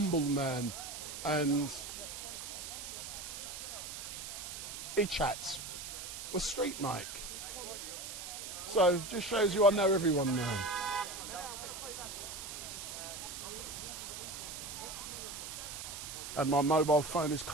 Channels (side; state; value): right; noise; hiss, 8 dB below the sound